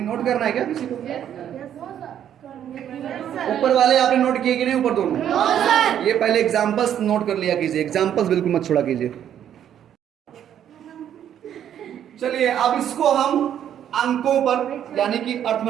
नोट करना है क्या किसी को? ऊपर वाले आपने नोट किए कि नहीं? ऊपर दोनों ये पहले एग्जांपल्स नोट कर लिया कीजिए, एग्जांपल्स बिल्कुल मत छोड़ा कीजिए। चलिए अब इसको हम अंकों पर यानी कि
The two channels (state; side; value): quieter; left; 10.0 dB